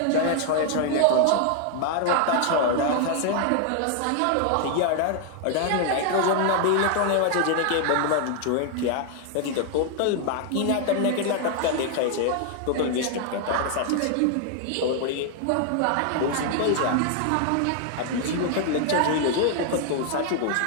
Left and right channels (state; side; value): different; both; correlation 0.00